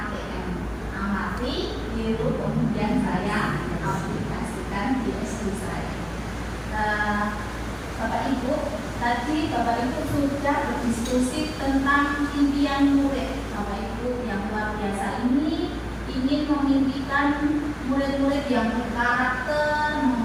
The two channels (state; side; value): identical; both; correlation 1.00